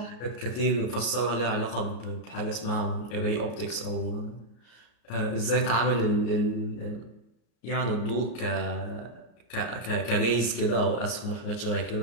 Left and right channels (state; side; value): late; right; 34 ms